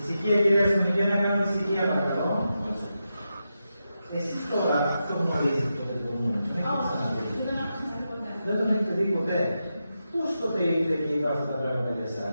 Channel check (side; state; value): both; inverted; correlation -0.88